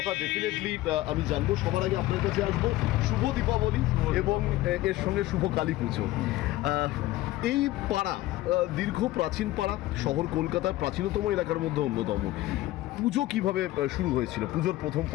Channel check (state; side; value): quieter; right; 16.7 dB